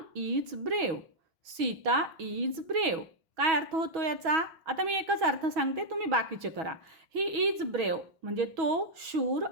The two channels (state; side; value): late; left; 6.2 ms